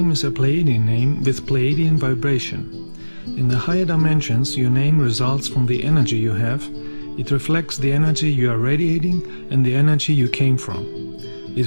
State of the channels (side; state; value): both; inverted; correlation -1.00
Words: is a Pleiadian name with Pleiadian vibration. In the higher dimensions, your name results from the energy you have. It reflects the energy you are radiating and the energy you came from. It